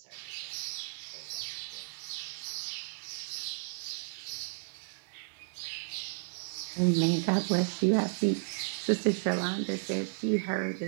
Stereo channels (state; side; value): silent; left; 55 dB below the other